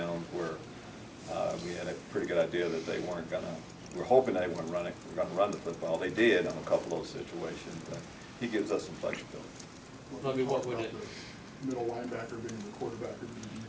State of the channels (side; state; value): both; identical; correlation 1.00